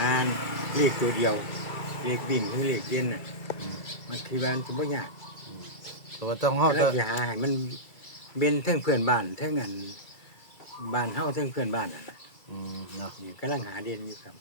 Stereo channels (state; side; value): late; right; 2.3 ms